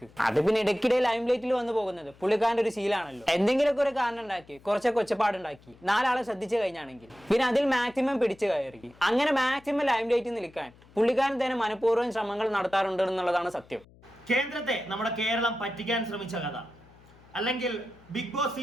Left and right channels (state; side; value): noise; left; hum, 26 dB below the sound